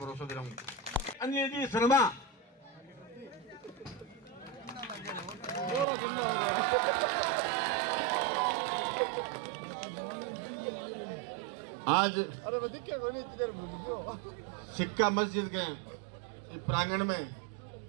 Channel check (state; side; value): drops out; left; at 5.9 s